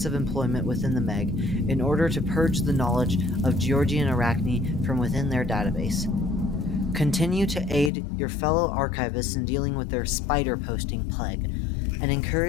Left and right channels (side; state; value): right; drops out; at 7.9 s